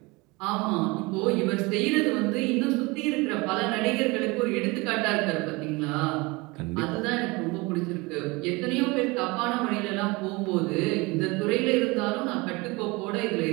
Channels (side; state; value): left; quieter; 24.8 dB